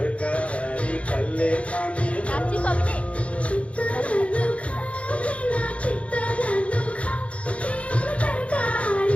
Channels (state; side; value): late; right; 0.063 ms